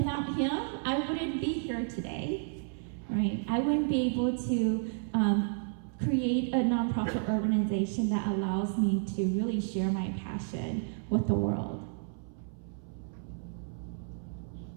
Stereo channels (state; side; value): silent; left; 57 dB below the other